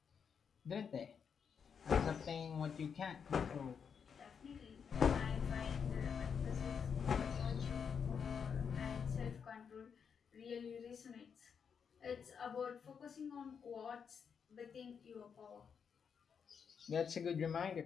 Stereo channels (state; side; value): quieter; right; 6.7 dB